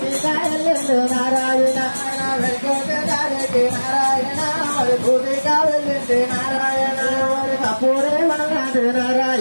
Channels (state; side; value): inverted; both; correlation -1.00